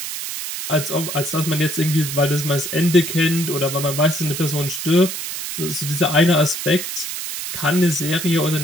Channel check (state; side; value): noise; right; hiss, 6 dB below the sound